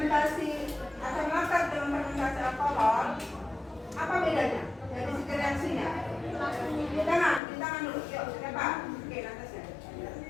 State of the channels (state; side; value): drops out; right; at 7.4 s